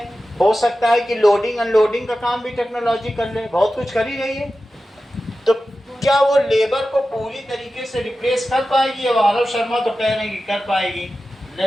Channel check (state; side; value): normal; both; correlation 0.93